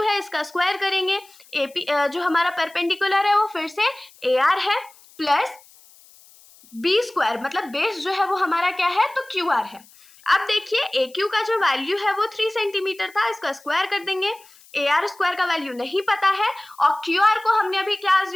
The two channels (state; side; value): noise; left; hiss, 26 dB below the sound